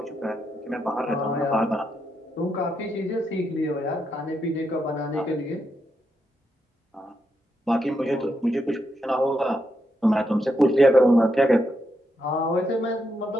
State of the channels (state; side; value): normal; both; correlation 0.82